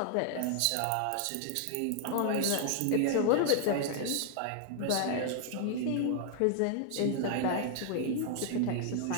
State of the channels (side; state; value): both; different; correlation 0.00